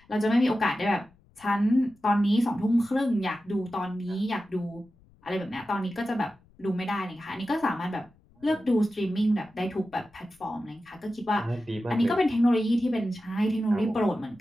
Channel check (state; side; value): noise; left; rumble, 30 dB below the sound